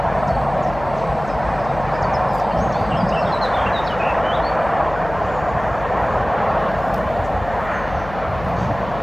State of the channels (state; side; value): noise; left; hum, 13 dB below the sound